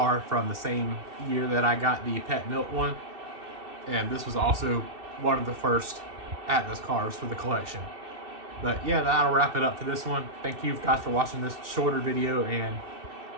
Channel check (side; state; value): left; late; 2.6 ms